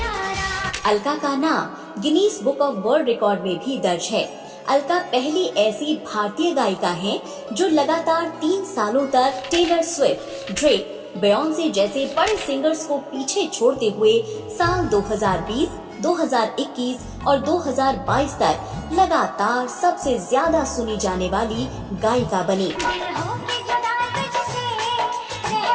अलका का नाम Guinness book of world record में भी दर्ज है। अलका पहली ऐसी भारतीय गायिका हैं जो लगातार 3 सालों तक टेलर स्विफ्ट, ड्रेक, बेयोंसे जैसे बड़े सिंगर्स को पीछे छोड़ते हुए साल 2020, 2021 और 2022 तक लगातार सबसे ज्यादा सुनी जाने वाली गायिका बनी। दिल होके जुदा तुझसे रह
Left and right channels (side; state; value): both; identical; correlation 1.00